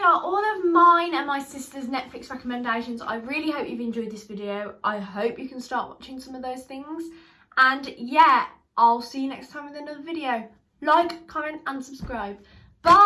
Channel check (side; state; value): both; identical; correlation 1.00